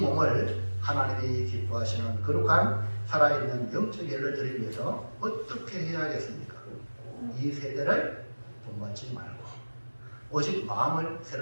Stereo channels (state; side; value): inverted; both; correlation -1.00